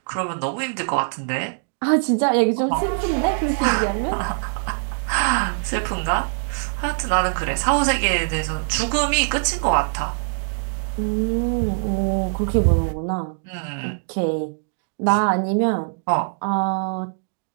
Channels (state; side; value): silent; left; digital silence